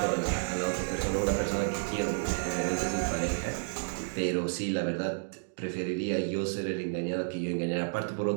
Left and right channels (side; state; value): left; silent; digital silence